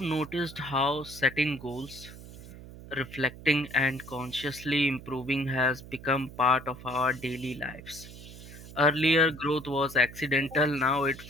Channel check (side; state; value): right; noise; hum, 16 dB below the sound